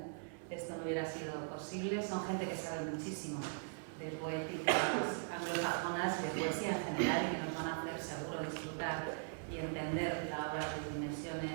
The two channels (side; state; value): left; silent; 51 dB below the other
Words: esto no hubiera sido posible. Son gente que sabe muchísimo de poéticas anglosajonas y de poesía en general y que nos van a hacer seguro disfrutar y entender la obra de